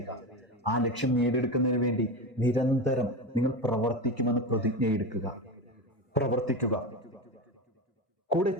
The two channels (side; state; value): both; normal; correlation 0.21